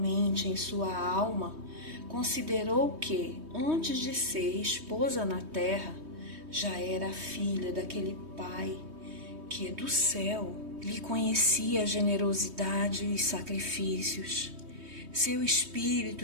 em sua alma, considerou que, antes de ser esposa na terra, já era filha daquele Pai que, do céu, lhe conhecia a generosidade e os sacrifícios. Seu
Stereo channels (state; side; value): late; left; 3.2 ms